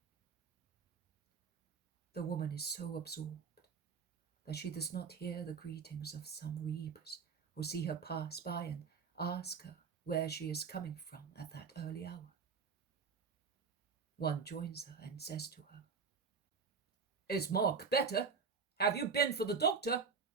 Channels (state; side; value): quieter; left; 5.6 dB